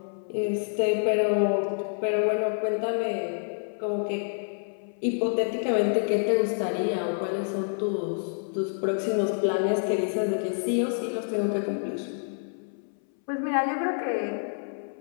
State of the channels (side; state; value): right; silent; 60 dB below the other